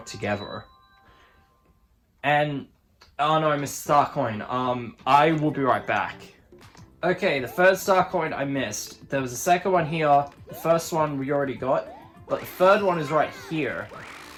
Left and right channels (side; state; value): both; identical; correlation 1.00